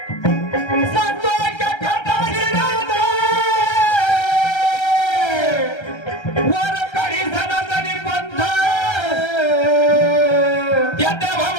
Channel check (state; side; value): late; right; 1.3 ms